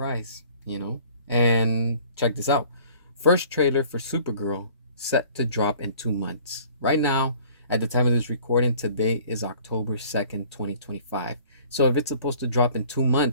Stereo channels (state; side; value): inverted; both; correlation -0.51